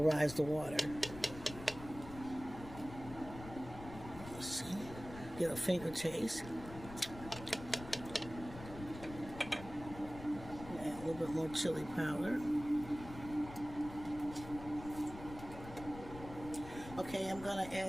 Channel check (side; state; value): left; noise; rumble, 13 dB below the sound